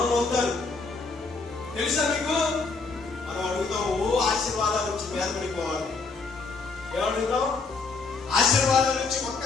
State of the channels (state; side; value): quieter; right; 4.2 dB